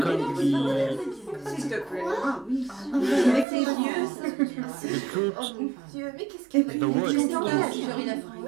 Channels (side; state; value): left; drops out; at 3.5 s